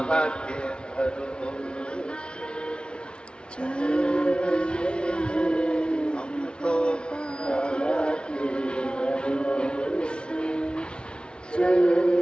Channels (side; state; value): right; late; 0.056 ms